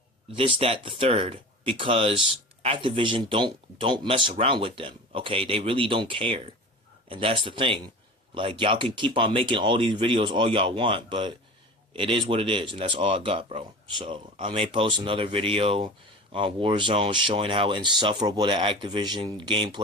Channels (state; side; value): normal; both; correlation 0.34